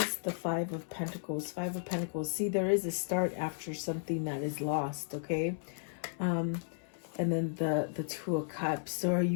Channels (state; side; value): silent; right; 55 dB below the other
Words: the Five of Pentacles? Five of Pentacles. See, there is a start after something that is lost, okay? And then the Two of Cups. So are